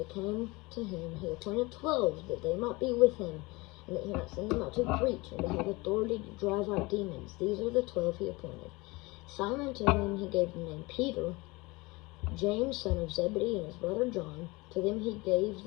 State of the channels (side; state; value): right; quieter; 23.9 dB